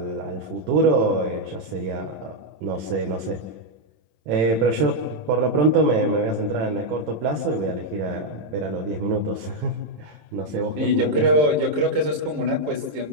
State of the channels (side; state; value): left; late; 27 ms